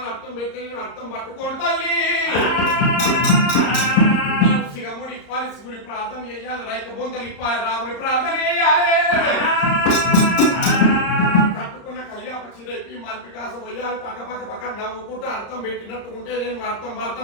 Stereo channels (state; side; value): late; right; 34 ms